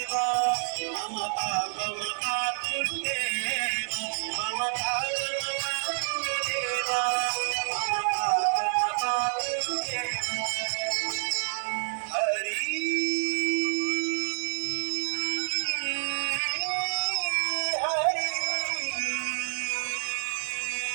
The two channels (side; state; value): left; silent; digital silence